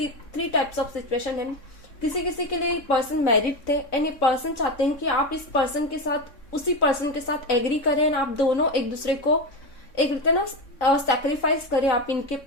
टाइप्स ऑफ सिचुएशन है। किसी किसी के लिए पर्सन मैरिड थे एंड ये पर्सन चाहते हैं कि आप इस पर्सन के साथ उसी पर्सन के साथ एग्री करें, आप दोनों एक दूसरे को एक रहता ना सैक्रिफाइस करें, आप इनके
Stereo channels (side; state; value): right; late; 3.6 ms